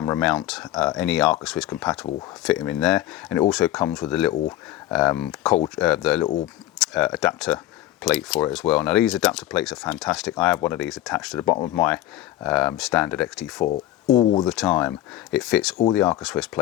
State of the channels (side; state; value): right; quieter; 14.2 dB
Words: mount, any Arca-Swiss compatible, fit them in there. And it also comes with a little adapter plate for it as well. Now these adapter plates are fantastic. I have one of these attached to the bottom of my standard XT4 all the time. It fits all the Arca-Swiss